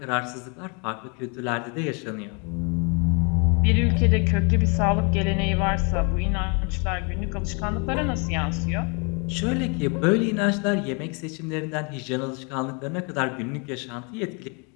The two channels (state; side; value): quieter; right; 34.0 dB